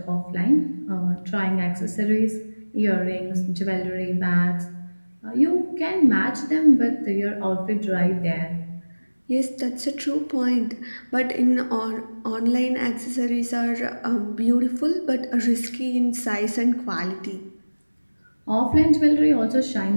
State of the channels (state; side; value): inverted; both; correlation -1.00